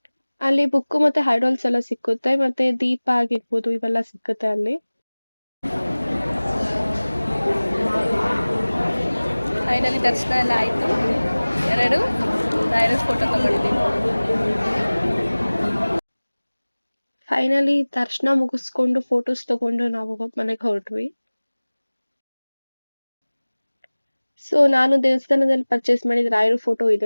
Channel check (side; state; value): both; inverted; correlation -1.00